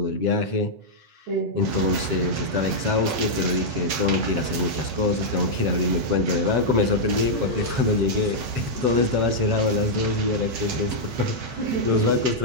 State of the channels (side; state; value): left; late; 8.5 ms